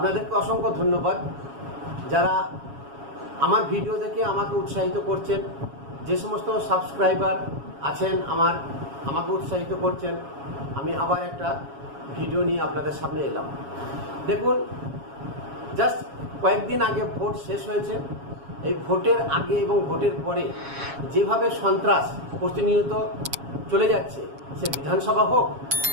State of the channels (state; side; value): late; left; 7.2 ms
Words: অসংখ্য ধন্যবাদ যারা আমার ভিডিও দেখে আমাকে উৎসাহিত করছেন। যে সমস্ত সাবস্ক্রাইবার আছেন আমাকে উৎসাহিত করছেন। আমি আবার একটা ভিডিও নিয়ে আপনাদের সামনে এলাম। দেখুন, জাস্ট কয়েকদিন আগে ভোট শেষ হয়েছে। এই ভোটের আগে এবং ভোটের পরে যেভাবে সন্ত্রাস প্রতিনিয়ত চলে যাচ্ছে, সে বিধানসভা হোক